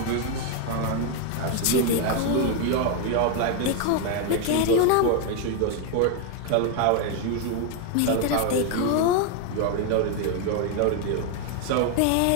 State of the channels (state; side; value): different; both; correlation 0.01